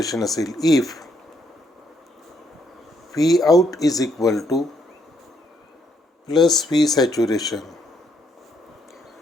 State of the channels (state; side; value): normal; both; correlation 0.73